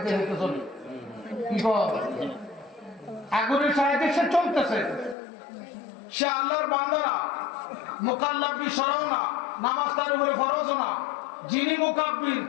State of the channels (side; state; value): right; drops out; at 5.2 s